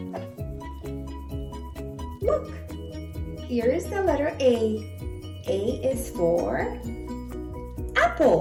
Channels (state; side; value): identical; both; correlation 1.00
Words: Look, here is the letter A. A is for